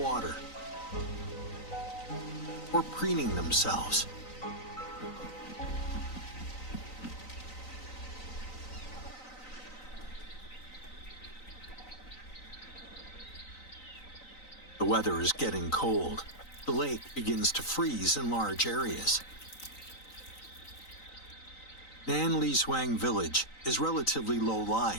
or preening themselves. The weather is getting cold. The lake begins to freeze in large areas. Nanlizhuang village is relatively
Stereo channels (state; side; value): late; right; 3.9 ms